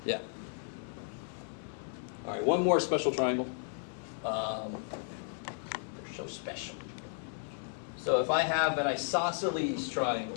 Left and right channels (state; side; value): silent; right; digital silence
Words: yeah. All right, one more special triangle. They're so special. So if I have an isosceles